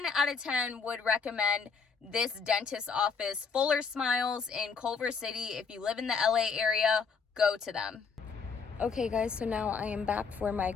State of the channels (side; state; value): right; quieter; 5.4 dB